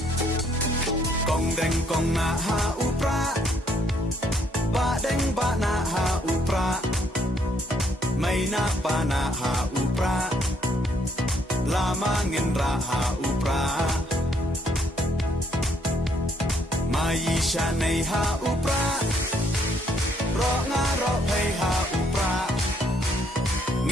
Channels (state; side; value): normal; both; correlation 0.68